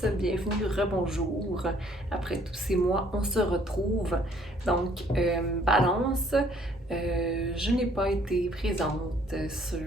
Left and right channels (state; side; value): normal; both; correlation 0.61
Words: bienvenue, rebonjour. Après tous ces mois, on se retrouve. Donc, Balance, je n'ai pas été présente